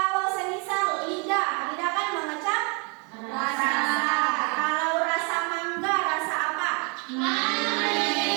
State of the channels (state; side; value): quieter; left; 34.5 dB